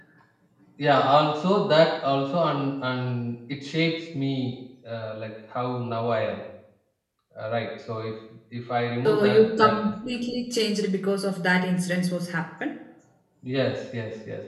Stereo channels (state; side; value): identical; both; correlation 1.00